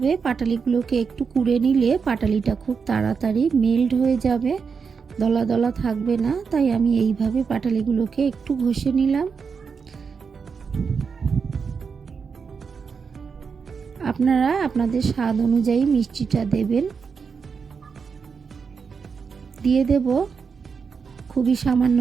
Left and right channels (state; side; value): quieter; left; 5.7 dB